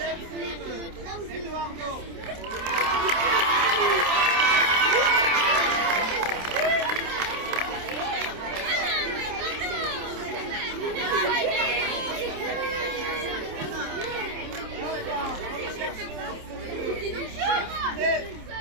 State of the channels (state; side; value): late; left; 27 ms